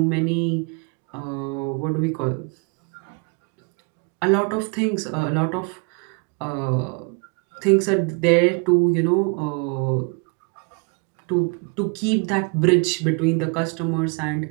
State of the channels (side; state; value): left; quieter; 35.0 dB